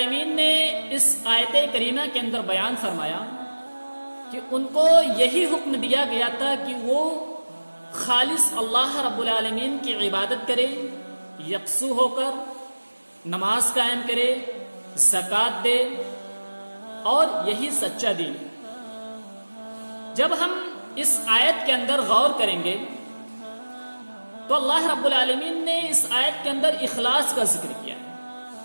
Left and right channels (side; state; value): both; inverted; correlation -1.00